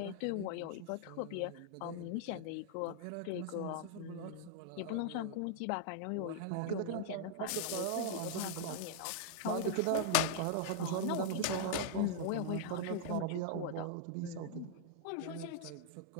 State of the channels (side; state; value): both; different; correlation -0.01